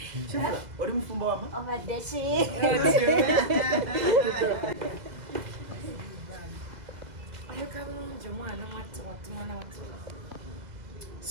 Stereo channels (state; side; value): late; left; 2.0 ms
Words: Shifrah, oli mufumbo wama? Obadde ki?